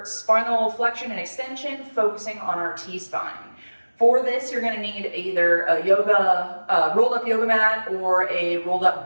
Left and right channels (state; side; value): inverted; both; correlation -1.00